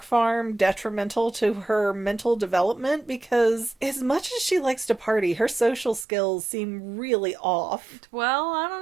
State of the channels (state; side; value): drops out; left; at 6.1 s